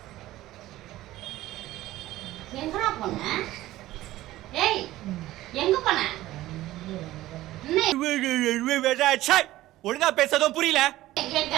எங்கடா போன ஏய் எங்க போன ஒழுங்கா பேசதும் புரியல கேட்க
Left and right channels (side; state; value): left; quieter; 15.9 dB